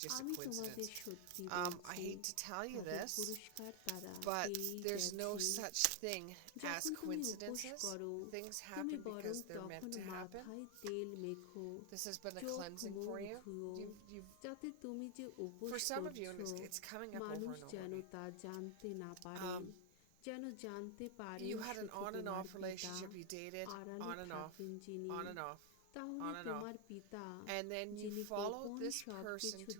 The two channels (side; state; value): both; different; correlation 0.00